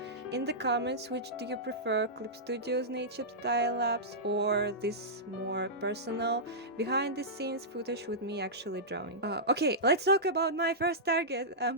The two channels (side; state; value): both; normal; correlation -0.13